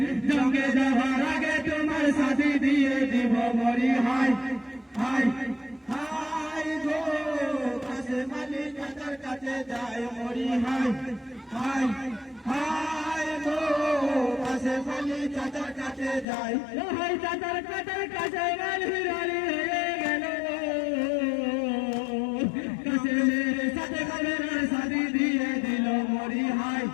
জঙ্গে যাওয়ার আগে তোমার সাথী দিয়ে দিব মরি হাই হাই হাই গো কাছে যায় মরি হাই হাই হাই গো কাছে মালি চাচার কাছে যায় হাই চাচার কাছে গালি গালি হয়ে গেল কাছে সাথে ঘরের সাথী দিয়ে দিল মরি হাই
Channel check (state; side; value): drops out; right; at 16.2 s